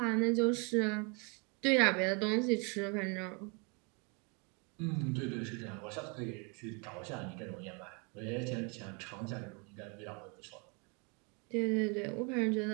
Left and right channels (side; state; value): left; quieter; 32.9 dB